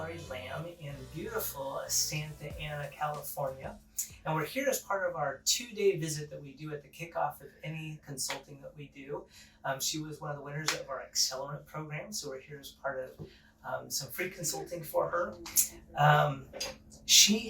Lamb in beautiful Santa Ana, California. And we're here as part of our 2-day visit that we do at the kickoff of any consulting that we do. She was one of the winners of our Accelerant Program, so we're here as part of some free consulting for her. She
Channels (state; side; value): identical; both; correlation 1.00